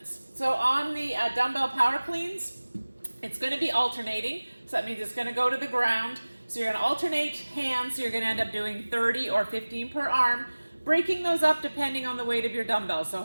So on the dumbbell power cleans, it's going to be alternating, so that means it's going to go to the ground. So you're going to alternate hands, so you're going to end up doing 30 or 15 per arm. Breaking those up depending on the weight of your dumbbell. So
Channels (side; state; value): both; inverted; correlation -1.00